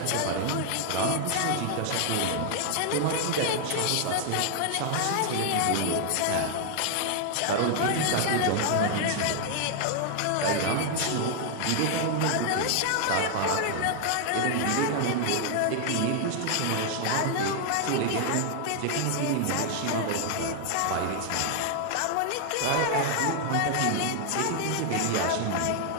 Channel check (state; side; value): different; both; correlation 0.00